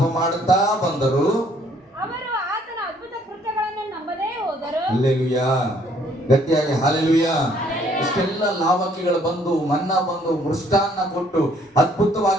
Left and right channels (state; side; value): normal; both; correlation 0.63